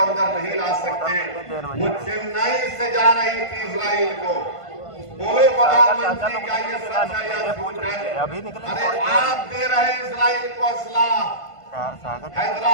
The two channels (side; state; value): right; late; 1.5 ms